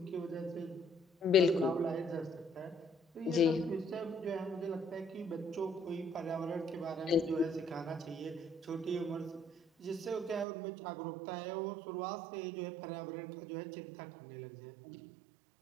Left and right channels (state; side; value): drops out; left; at 10.5 s